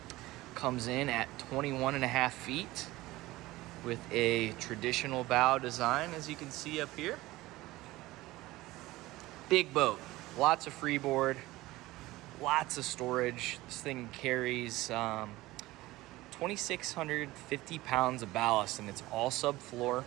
Comes in at 21.5 feet with a traditional bow design, as you can see up here. Big boat, lots of freeboard, lots of storage. This thing carries 2,650 pounds of ballast, and it's all subfloor.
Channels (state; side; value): quieter; left; 18.5 dB